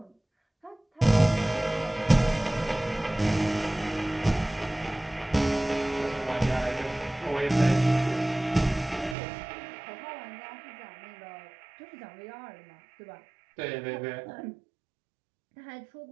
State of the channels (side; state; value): left; drops out; at 9.2 s